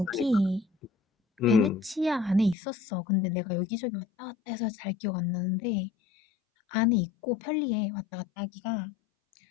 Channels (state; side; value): drops out; right; at 2.6 s